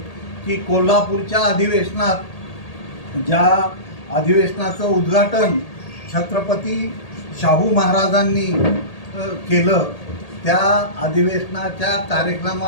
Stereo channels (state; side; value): late; right; 1.8 ms